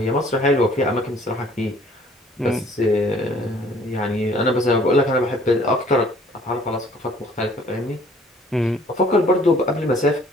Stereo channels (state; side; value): normal; both; correlation 0.57